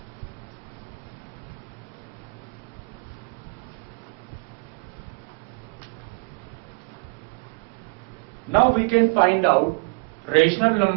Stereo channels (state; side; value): quieter; left; 32.3 dB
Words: Now we can find out rational